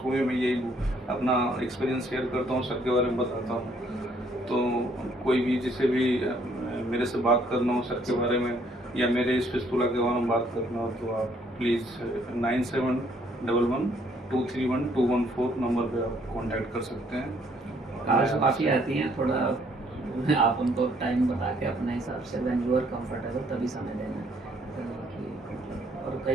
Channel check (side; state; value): both; normal; correlation 0.65